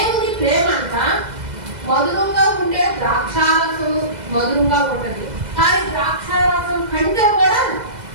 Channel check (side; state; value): left; late; 2.0 ms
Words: ప్రేమ అంట మధురంగా ఉండే ద్రాక్షారసం మధురంగా ఉంటుంది, కానీ ద్రాక్షారసం కంటే కూడా